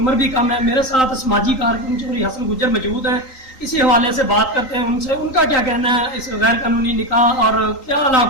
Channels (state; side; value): late; right; 3.8 ms